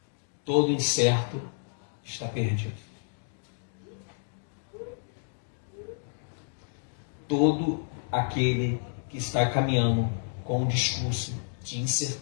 Todo incerto está perdido. Todo aquele que está caminhando com um discurso de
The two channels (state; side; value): silent; right; digital silence